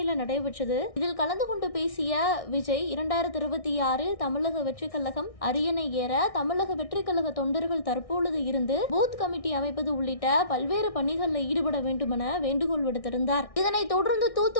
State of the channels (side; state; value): right; late; 1.6 ms